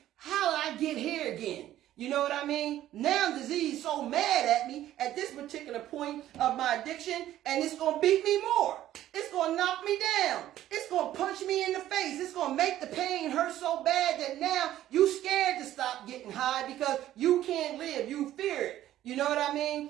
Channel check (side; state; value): left; quieter; 13.1 dB